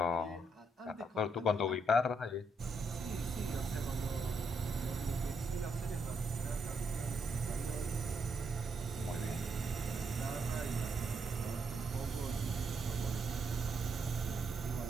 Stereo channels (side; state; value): both; normal; correlation 0.77